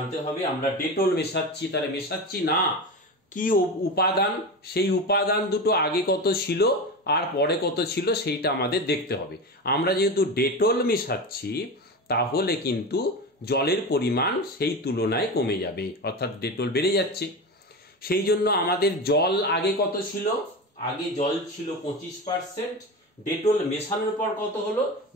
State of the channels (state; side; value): normal; both; correlation 0.23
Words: হবে। আমরা ডেটল মেশাচ্ছি, তাহলে মেশাচ্ছি না কি উপাদান, সেই উপাদান দুটো আগে কত ছিল আর পরে কত ছিল সেইটা আমাদের দেখতে হবে। আমরা যেহেতু ডেটল মেশাচ্ছি তাহলে কিন্তু জলের পরিমাণ সেই তুলনায় কমে যাবে, অর্থাৎ ডেটল বেড়ে যাচ্ছে। সেই জন্য আমাদের জল আগে কত ছিল, আগে জল ছিল 25%, ডেটল মেশানোর পর কত হলো,